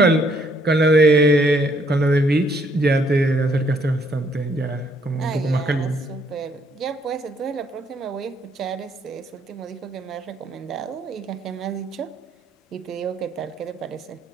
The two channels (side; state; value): both; normal; correlation 0.68